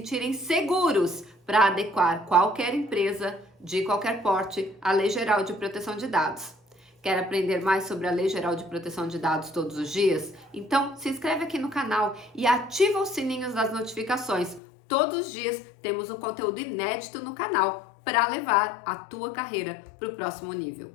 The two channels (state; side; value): drops out; right; at 14.6 s